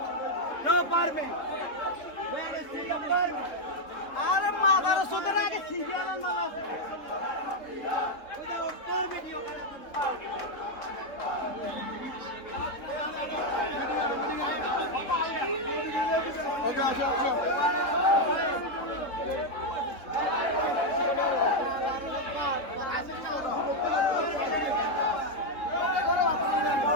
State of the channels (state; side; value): late; right; 3.7 ms